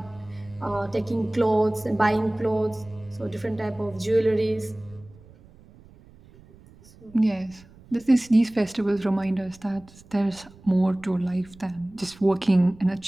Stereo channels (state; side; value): noise; right; rumble, 24 dB below the sound